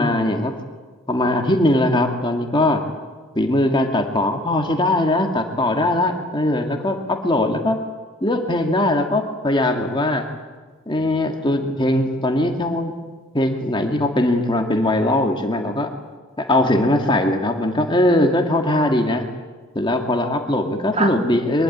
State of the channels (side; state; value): both; normal; correlation 0.56